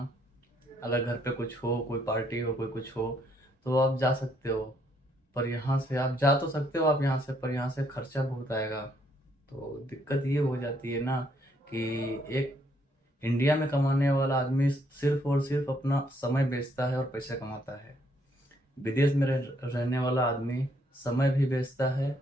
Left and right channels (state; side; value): normal; both; correlation 0.70